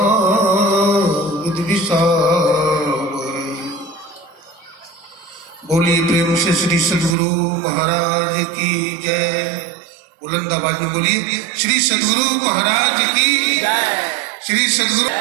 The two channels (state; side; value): drops out; left; at 7.2 s